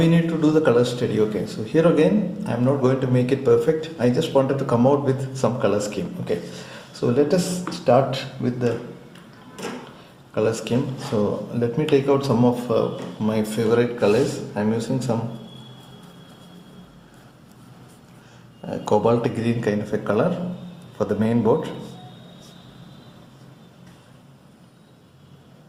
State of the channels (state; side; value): identical; both; correlation 1.00